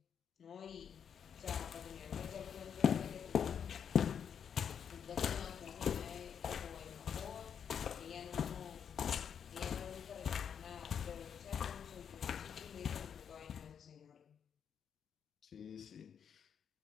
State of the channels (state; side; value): quieter; right; 7.7 dB